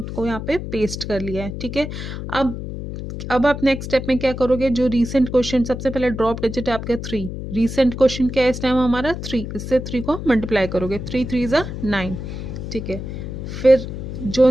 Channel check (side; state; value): left; noise; hum, 7 dB below the sound